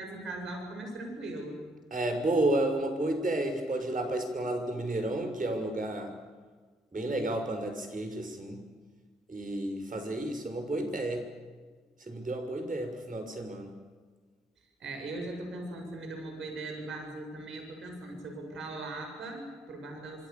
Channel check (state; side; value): normal; both; correlation 0.69